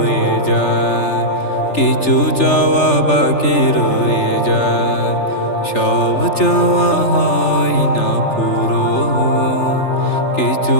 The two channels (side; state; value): right; late; 3.3 ms